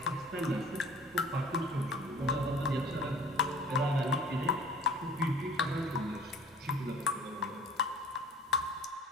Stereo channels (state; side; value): normal; both; correlation 0.48